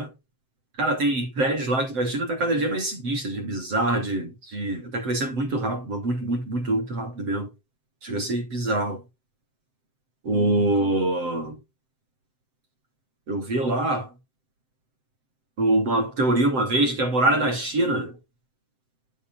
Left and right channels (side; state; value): left; late; 7.7 ms